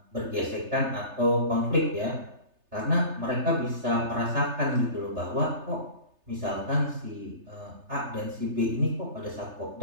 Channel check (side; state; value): left; late; 3.3 ms